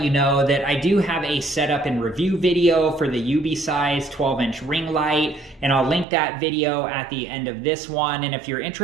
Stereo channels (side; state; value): left; drops out; at 6.1 s